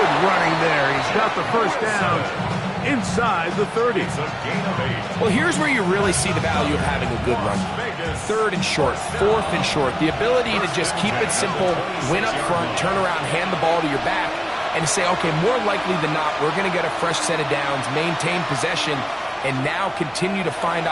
running there. He's got the first down inside the 30. Well, here's where you really see the value of having a good run. 3rd and short, 4th and short. The ability to just keep it simple, win up front, turn around, hand the ball to your back, and say, okay, more likely than not, we're going to get a fresh set of downs, maintain possession, and now continue to find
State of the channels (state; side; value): identical; both; correlation 1.00